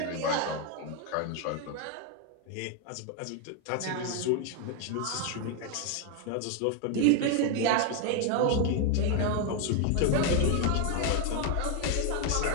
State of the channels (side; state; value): both; different; correlation 0.01